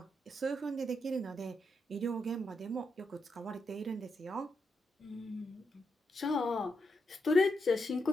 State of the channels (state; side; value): normal; both; correlation 0.83